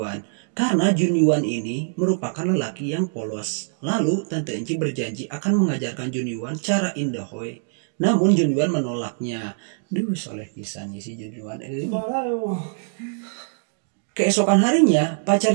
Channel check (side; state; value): left; silent; digital silence